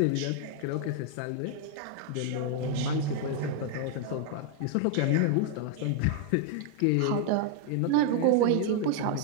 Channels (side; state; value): both; different; correlation 0.00